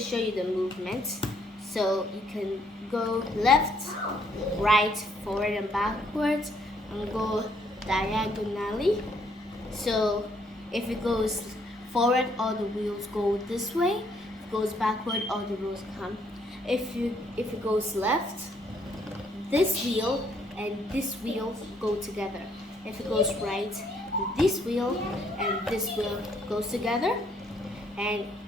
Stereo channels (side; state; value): both; normal; correlation 0.68